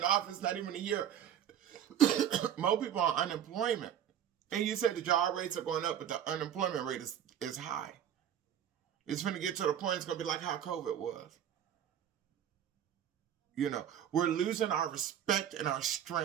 office, not even a year. More people on unemployment. And you said the job rates are going up, but the unemployment rate is high. It's going to get to the point it's going to be like how COVID was. You know, we're losing our respect and our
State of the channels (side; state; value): left; quieter; 9.8 dB